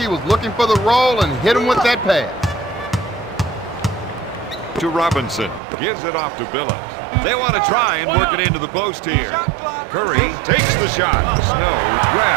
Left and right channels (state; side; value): drops out; left; at 5.6 s